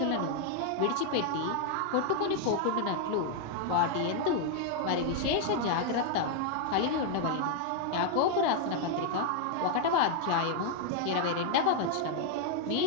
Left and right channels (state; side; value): different; both; correlation 0.00